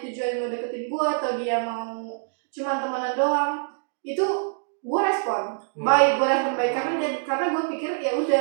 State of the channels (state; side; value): silent; left; digital silence